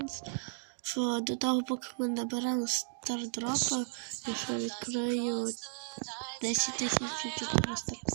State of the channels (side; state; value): left; silent; digital silence